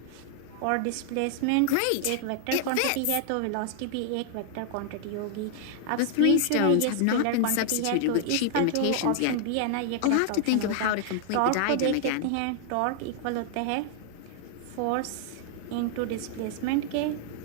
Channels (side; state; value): both; different; correlation 0.00